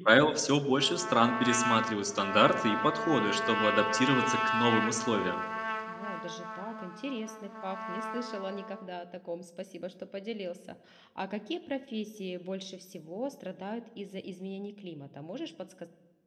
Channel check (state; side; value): identical; both; correlation 1.00